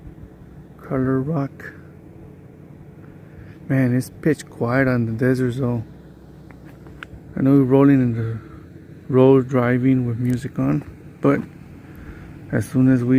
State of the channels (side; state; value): both; identical; correlation 1.00